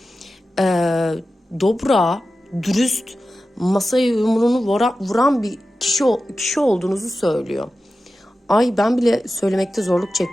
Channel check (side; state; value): both; normal; correlation 0.93